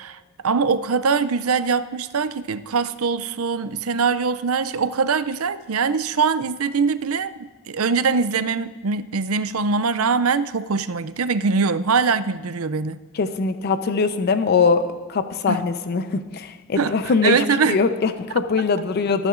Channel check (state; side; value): normal; both; correlation -0.06